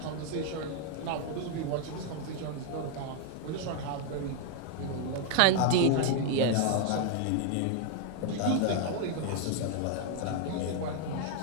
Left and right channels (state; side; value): different; both; correlation 0.00